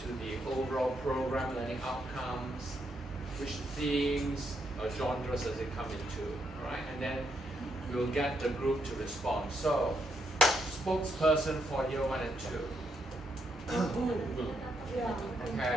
the overall program learning outcomes, which themes or genres does it come into, right? And then we'll get the group to respond. So, spokesperson for year 1 and 2.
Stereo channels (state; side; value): normal; both; correlation 0.78